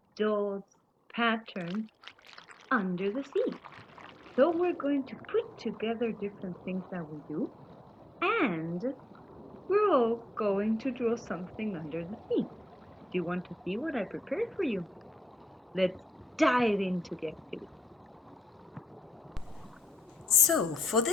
dots, patterns under the sea. So we're going to put together different things that we do, and we're all going to draw something under the sea. Do you want to see what I prepared for you? Let's dive into the activity. So, for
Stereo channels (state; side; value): normal; both; correlation 0.84